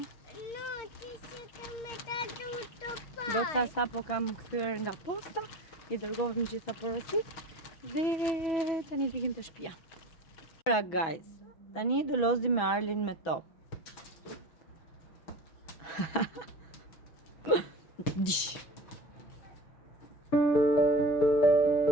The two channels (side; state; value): right; late; 6.1 ms